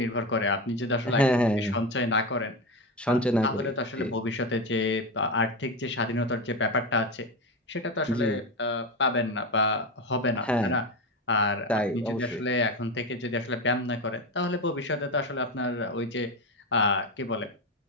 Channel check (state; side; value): normal; both; correlation 0.18